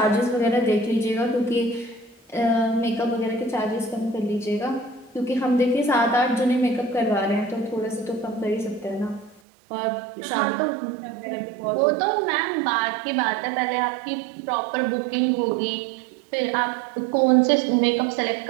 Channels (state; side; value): drops out; left; at 9.4 s